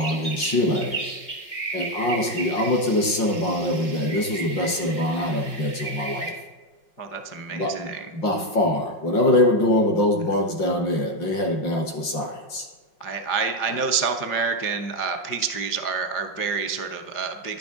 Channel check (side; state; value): right; late; 5.5 ms